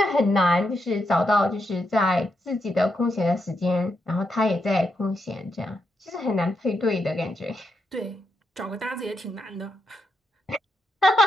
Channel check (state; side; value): normal; both; correlation 0.82